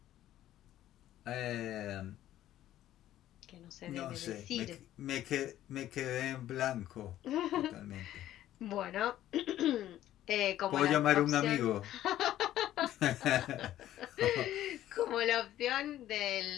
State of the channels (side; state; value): right; quieter; 13.0 dB